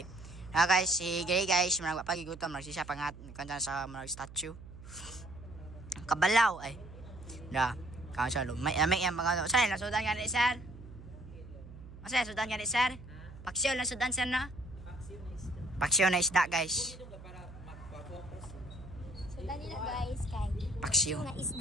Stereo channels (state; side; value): noise; right; hum, 16 dB below the sound